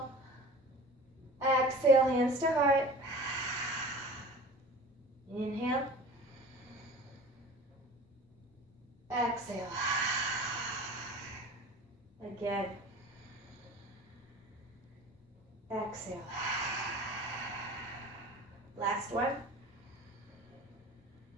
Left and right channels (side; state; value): both; normal; correlation 0.40